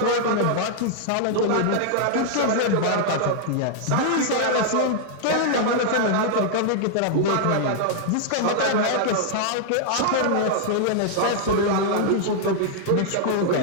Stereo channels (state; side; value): different; both; correlation -0.01